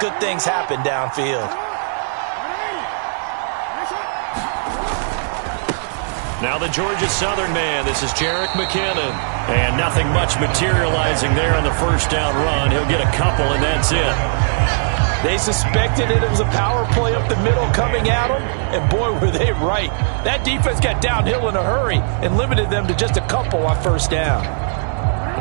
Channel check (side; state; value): left; silent; digital silence